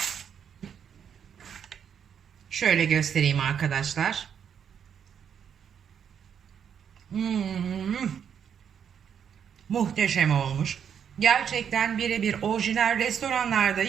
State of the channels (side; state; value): left; quieter; 8.0 dB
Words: Şöyle göstereyim arkadaşlar. Muhteşem olmuş. Gerçekten birebir orijinal restoranlarda